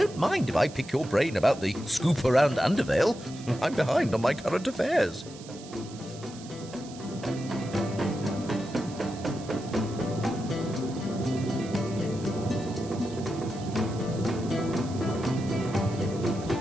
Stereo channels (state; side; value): noise; right; hiss, 18 dB below the sound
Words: mind if I pick your brain about the scoop around Undervale. I'm behind on my current affairs.